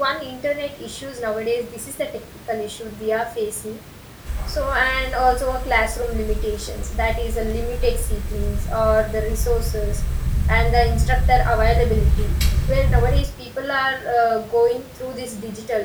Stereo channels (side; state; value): both; identical; correlation 1.00